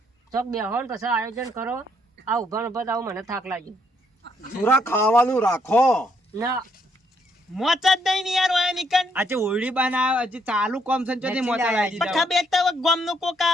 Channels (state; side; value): normal; both; correlation 0.72